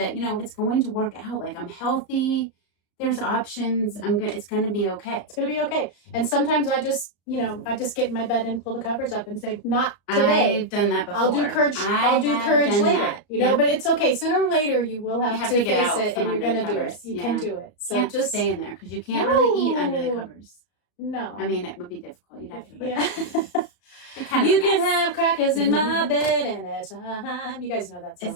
it's going to work out. I'm healthy. There's options. It's going to be okay. It's going to be okay. And sometimes I just get in my bed and pull the covers up and say, not today. I've done that before. I'll do courage later. But it's okay. Sooner or later, you will have to face it, and you're going to do it. You can do it. So can't just stay in there because you can't really eat under the covers. No. It would be difficult. You'd have to. Yeah. You can have crackers in my bed anytime. You guys know that song. Is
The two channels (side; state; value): right; late; 34 ms